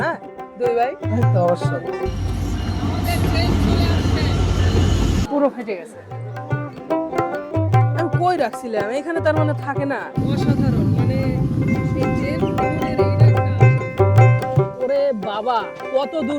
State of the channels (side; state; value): both; identical; correlation 1.00